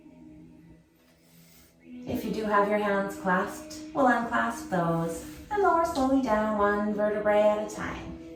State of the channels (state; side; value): identical; both; correlation 1.00